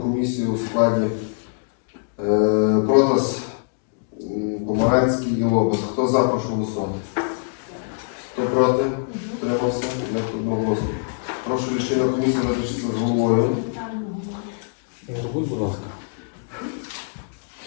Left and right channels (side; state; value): right; silent; digital silence